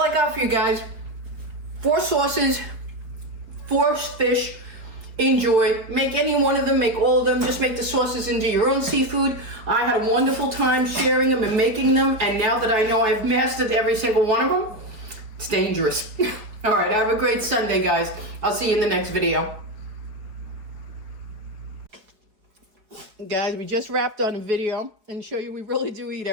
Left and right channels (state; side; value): late; left; 5.1 ms